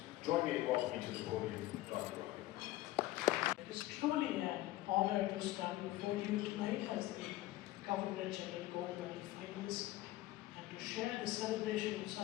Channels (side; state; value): right; quieter; 16.6 dB